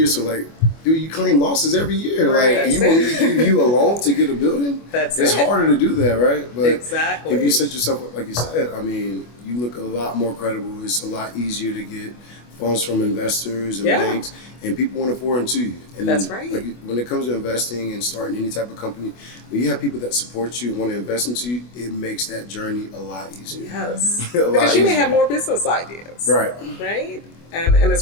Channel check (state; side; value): late; right; 25 ms